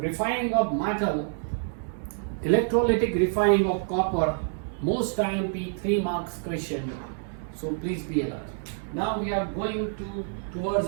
of metal, electrolytic refining of copper, most IMP 3 marks question, so please be alert. Now we are going towards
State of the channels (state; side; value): silent; left; 60 dB below the other